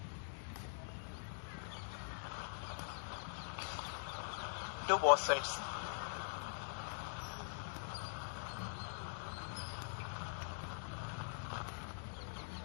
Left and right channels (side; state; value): right; silent; digital silence